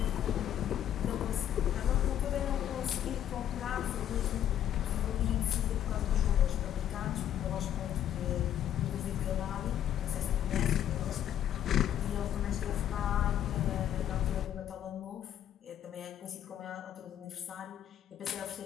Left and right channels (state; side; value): quieter; right; 10.7 dB